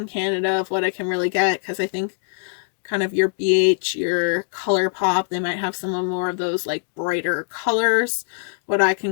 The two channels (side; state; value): right; silent; digital silence